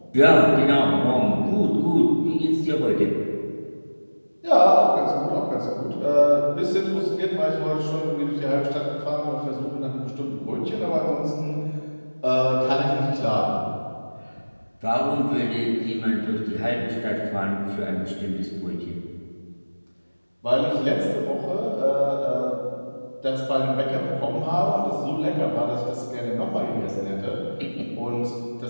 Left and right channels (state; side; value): inverted; both; correlation -1.00